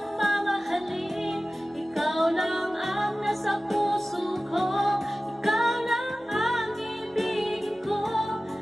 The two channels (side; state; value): both; normal; correlation 0.96